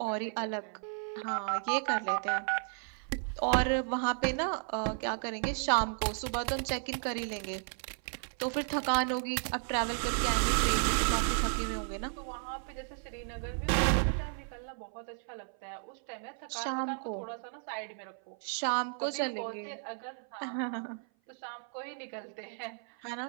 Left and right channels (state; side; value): silent; left; 55 dB below the other